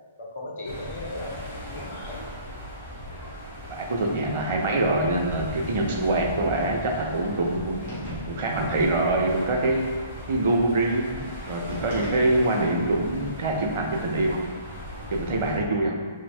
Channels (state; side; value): inverted; both; correlation -0.55